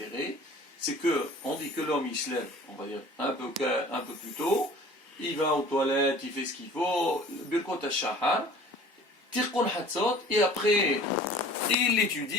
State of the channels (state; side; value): normal; both; correlation 0.46